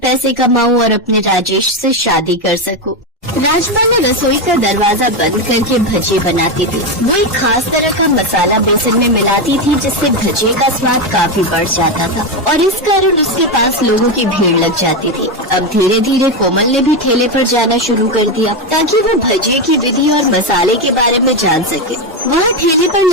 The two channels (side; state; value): both; normal; correlation 0.10